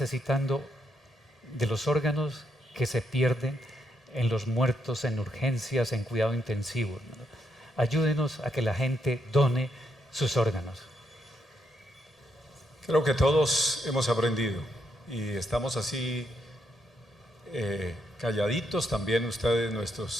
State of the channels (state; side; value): normal; both; correlation 0.78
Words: de los órganos que se pierden en los muertos, en urgencias, en cuidado intensivo. Ayúdenos a que la gente done sus órganos. Creo que todos hemos aprendido y estamos así calladitos, también ustedes,